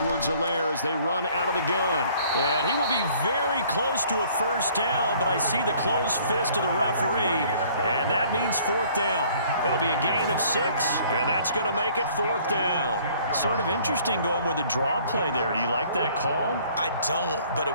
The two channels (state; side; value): inverted; both; correlation -0.57